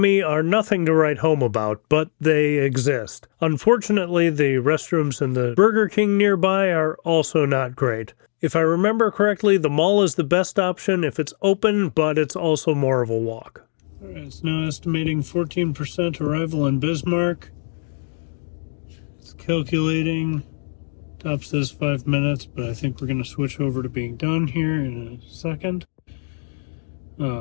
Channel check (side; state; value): right; silent; digital silence